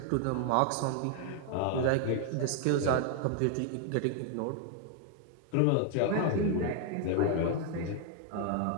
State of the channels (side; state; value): both; different; correlation 0.00